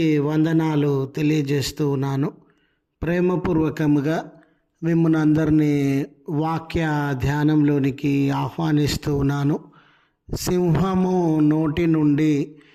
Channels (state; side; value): identical; both; correlation 1.00